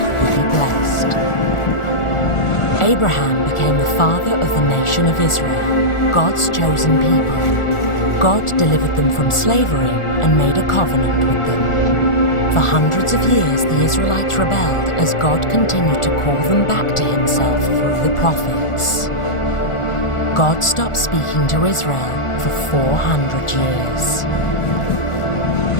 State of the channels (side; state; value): right; late; 1.4 ms